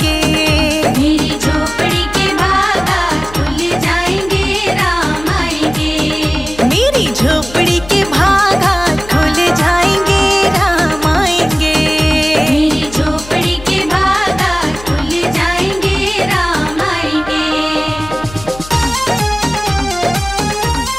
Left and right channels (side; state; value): left; noise; hum, 16 dB below the sound